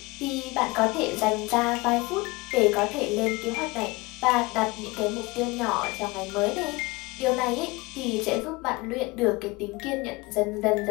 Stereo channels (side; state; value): right; quieter; 23.8 dB